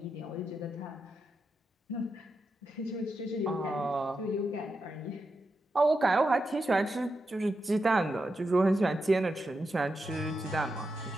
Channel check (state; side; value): normal; both; correlation 0.87